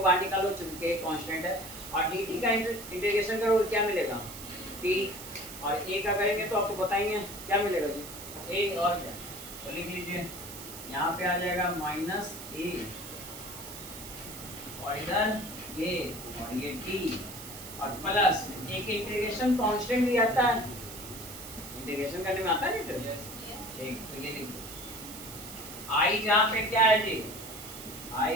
बाहर निकालो चूंकि के कांस्टेंट है, और dt का इंटीग्रेशन करोगे क्या मिलेगा t, और a का करेंगे तो आपको बताएंगे क्या मिलेगा जी a, और क्या तो लिख लीजिए यहाँ पे आ जाएगा माइनस a और इधर a और ये t और प्लस एक इंटीग्रेशन कांस्टेंट भी आता है, इंटीग्रेशन करने में आता है नहीं ठीक, तो ये लिख दो i जहाँ पे क्या है जी i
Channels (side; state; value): right; noise; hiss, 12 dB below the sound